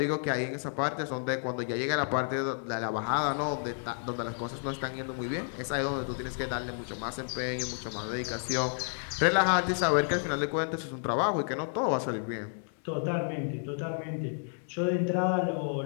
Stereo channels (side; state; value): right; silent; 57 dB below the other